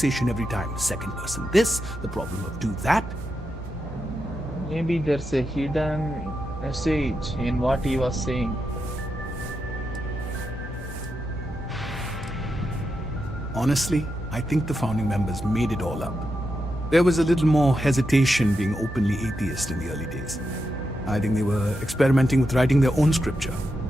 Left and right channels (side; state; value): both; normal; correlation 0.86